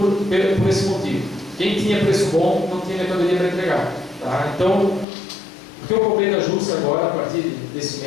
por esse motivo. Quem tinha preço bom não tinha mercadoria para entregar. Tá? Então, o que eu cobrei da Júcia agora, a partir desse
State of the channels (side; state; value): right; drops out; at 5.1 s